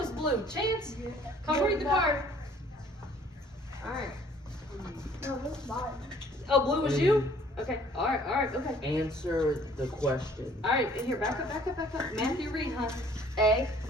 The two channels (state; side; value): normal; both; correlation 0.57